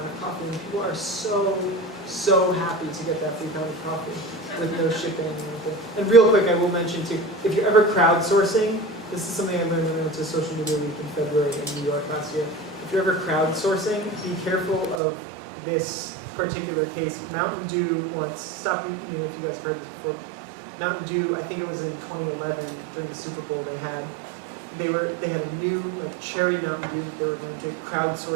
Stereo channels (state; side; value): drops out; left; at 15.0 s